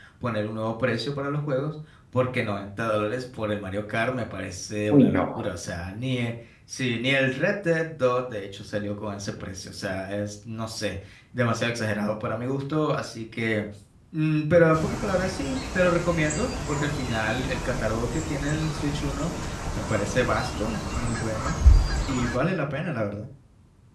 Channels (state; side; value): identical; both; correlation 1.00